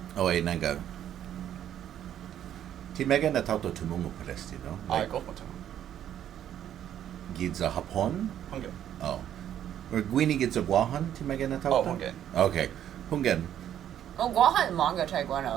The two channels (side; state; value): left; quieter; 10.6 dB